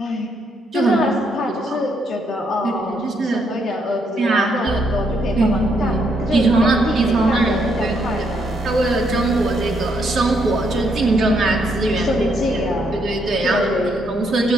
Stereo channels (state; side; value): normal; both; correlation 0.74